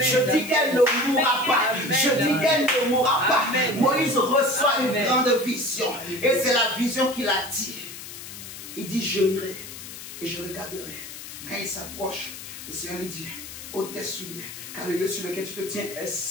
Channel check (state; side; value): noise; left; hiss, 12 dB below the sound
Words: dis qu'elle ne mourra pas. Je dis qu'elle ne mourra pas. Moïse reçoit une grande vision. Et c'est la vision qu'il a dit. Il dit, je irai et je regarderai. Quand il s'approche, le Seigneur lui dit, ôte tes souliers, car le lieu sur lequel tu te tiens est